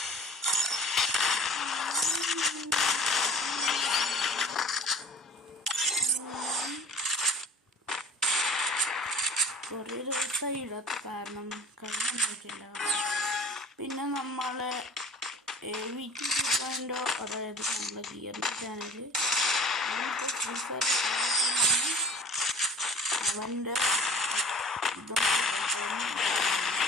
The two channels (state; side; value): normal; both; correlation 0.43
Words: കുറേ ദിവസമായി ഇടാത്ത കാരണം കഴിഞ്ഞിട്ടില്ല. പിന്നെ നമ്മളെ വീട്ടിൽ കിട്ടാൻ്റെ അതായത് നമ്മുടെ ഗിയറിൻ്റെ ചാനൽ ഫ്രീ ഫയർ അവൻ്റെ